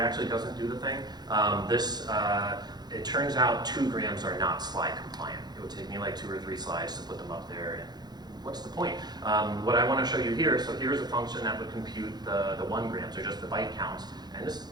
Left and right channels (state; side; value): late; left; 0.20 ms